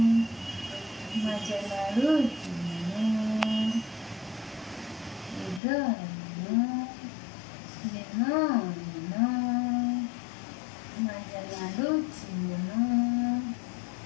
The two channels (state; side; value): drops out; right; at 5.6 s